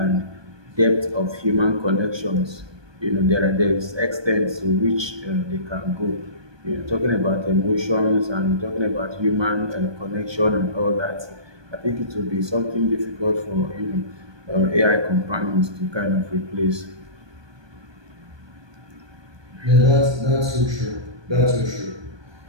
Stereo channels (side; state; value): left; late; 1.2 ms